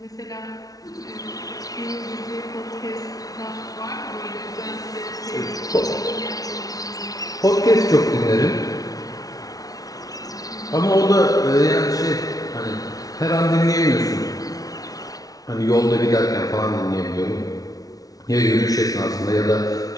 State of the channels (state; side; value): late; right; 0.18 ms